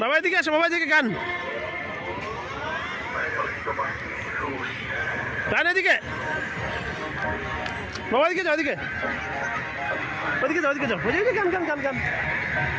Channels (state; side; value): identical; both; correlation 1.00